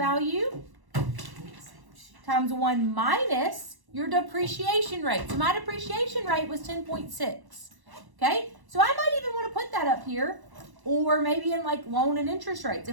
times 1 minus your depreciation rate. So my depreciation rate was 10.6. Okay? So I might even want to put that up here, or maybe in like loan and interest rates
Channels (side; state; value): left; late; 1.1 ms